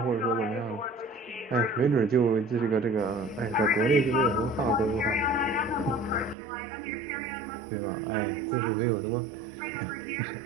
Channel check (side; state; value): left; drops out; at 6.4 s